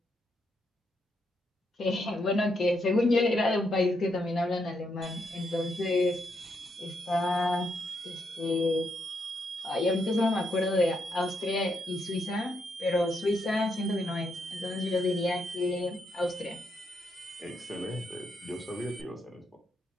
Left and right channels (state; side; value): normal; both; correlation 0.79